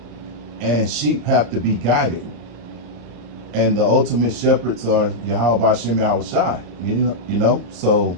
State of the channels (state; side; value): late; left; 34 ms